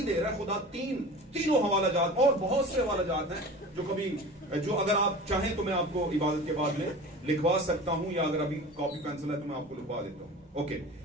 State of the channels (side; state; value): both; normal; correlation 0.36